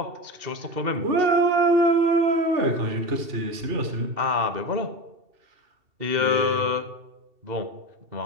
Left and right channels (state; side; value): late; left; 2.7 ms